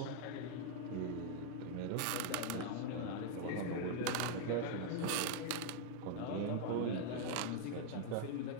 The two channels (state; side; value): different; both; correlation 0.00